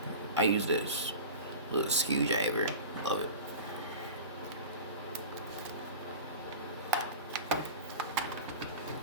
I use this little screwdriver. Love it.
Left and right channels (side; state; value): both; inverted; correlation -0.33